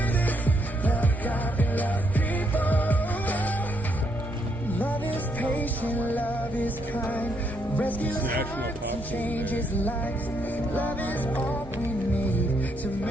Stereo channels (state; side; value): normal; both; correlation 0.75